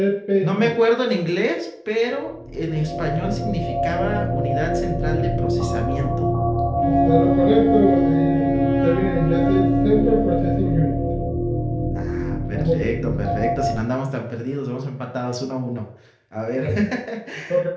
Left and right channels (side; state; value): both; identical; correlation 1.00